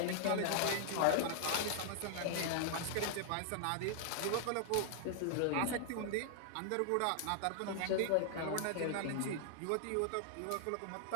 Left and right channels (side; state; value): both; different; correlation 0.00